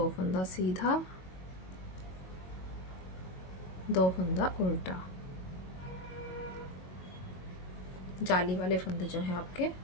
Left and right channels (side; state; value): right; late; 22 ms